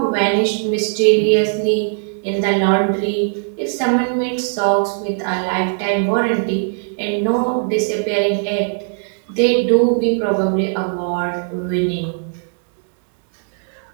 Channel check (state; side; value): silent; left; 67 dB below the other